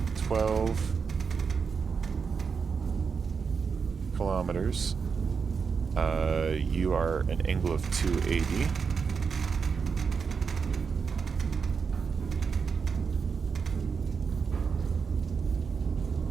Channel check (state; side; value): quieter; left; 5.7 dB